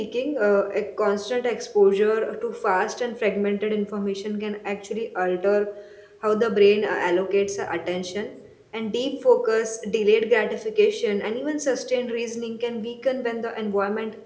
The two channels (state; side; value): identical; both; correlation 1.00